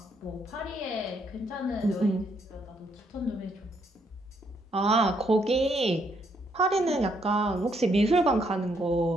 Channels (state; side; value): normal; both; correlation 0.72